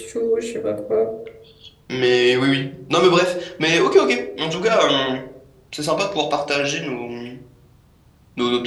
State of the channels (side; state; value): both; identical; correlation 1.00